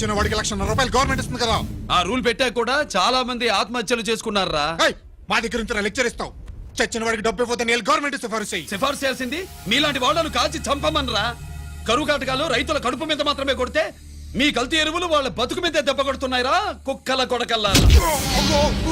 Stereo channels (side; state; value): both; identical; correlation 1.00